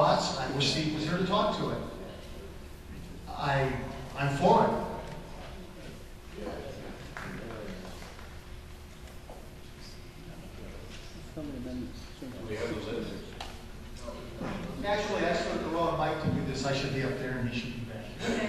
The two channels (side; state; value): both; identical; correlation 1.00